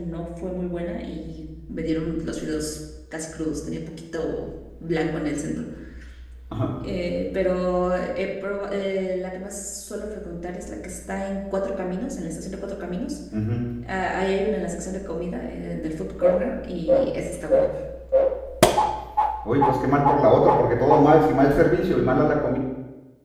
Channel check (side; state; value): both; identical; correlation 1.00